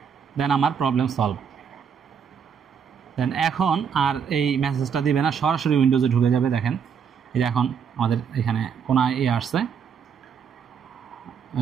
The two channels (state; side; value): quieter; left; 7.0 dB